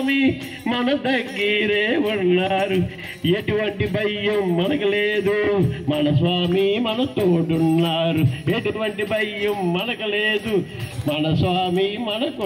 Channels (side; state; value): both; identical; correlation 1.00